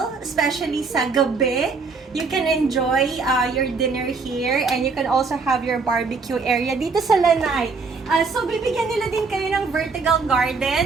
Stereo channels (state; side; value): quieter; left; 4.5 dB